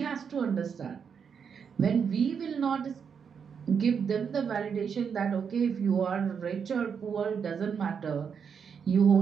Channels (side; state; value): left; quieter; 6.8 dB